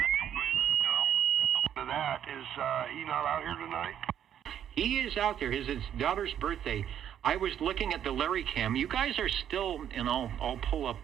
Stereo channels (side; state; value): left; quieter; 9.8 dB